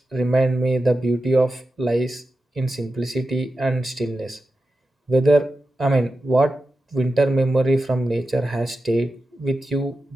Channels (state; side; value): normal; both; correlation 0.91